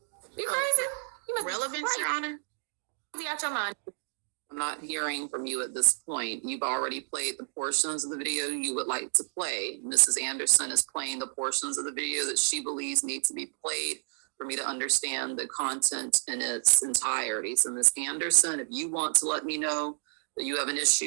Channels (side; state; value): left; silent; digital silence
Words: You crazy? You must Relevance, Your Honor? be out your mind. I'm not hearing from you at this point. You've already played the portions of the video you would like to play. Mrs. Anderson is playing the portions of the video that she believes need to be played for me to understand the content in its entirety. So, Ms. Anderson, if you want to let me know that you have an